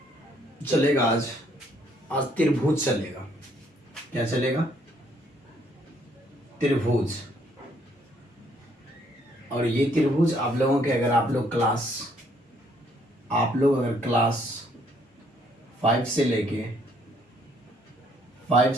चलेगा आज आज त्रिभुज चलेगा। क्या चलेगा? त्रिभुज। और ये त्रिभुज आप लोगों के अगर आप लोग अगर क्लास 5 से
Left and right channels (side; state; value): both; normal; correlation 0.67